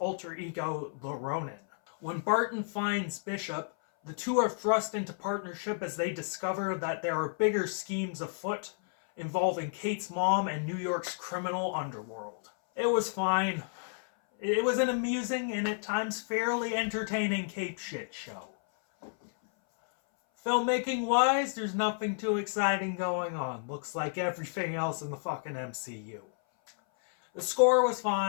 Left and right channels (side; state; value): right; silent; 57 dB below the other